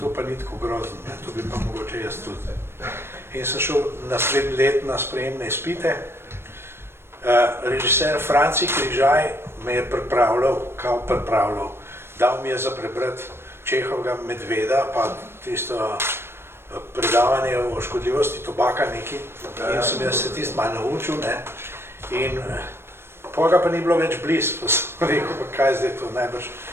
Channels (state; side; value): late; left; 0.12 ms